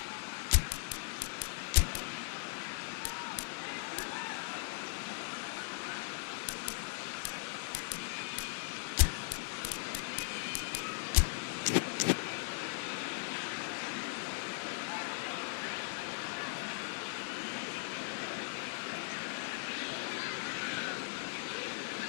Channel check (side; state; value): right; silent; digital silence